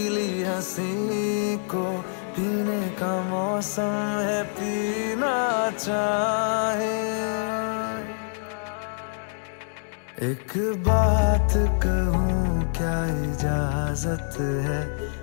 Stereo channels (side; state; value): right; silent; digital silence